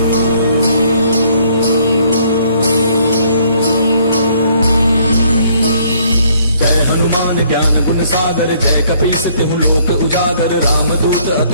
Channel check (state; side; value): inverted; both; correlation -0.64